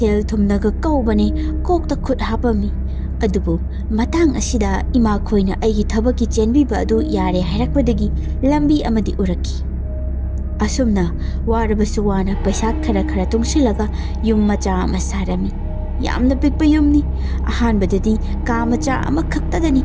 ꯊꯨꯝꯅꯒ ꯀꯧꯕꯅꯦ ꯀꯣꯛꯇ ꯈꯨꯠ ꯍꯥꯞꯄꯝꯃꯤ꯫ ꯑꯗꯨꯕꯨ ꯃꯇꯥꯡ ꯑꯁꯤꯗ ꯏꯃꯥꯈꯣꯏꯅ ꯑꯩꯒꯤ ꯊꯕꯛꯀꯤ ꯆꯦꯟꯕꯤꯕ ꯑꯗꯨ ꯌꯥꯔꯦ ꯍꯥꯏꯔꯛꯄꯗꯒꯤ ꯂꯝꯕꯤ ꯑꯃꯗꯤ ꯎꯔꯛꯈꯤ꯫ ꯑꯁꯨꯝꯅ ꯋꯥꯔꯕꯁꯨ ꯋꯥꯅ ꯄꯩꯁꯥ ꯈꯔ ꯈꯔ ꯇꯨꯡꯁꯤꯜꯂꯒ ꯌꯨꯝ ꯃꯆꯥ ꯑꯃ ꯁꯥꯔꯝꯃꯤ꯫ ꯌꯥꯝꯅ ꯄꯤꯛꯄ ꯌꯨꯝꯅꯤ꯫ ꯑꯍꯥꯟꯕꯗꯗꯤ ꯀꯥ ꯃꯆꯥ ꯑꯃꯈꯛꯇꯗꯅꯤ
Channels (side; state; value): both; identical; correlation 1.00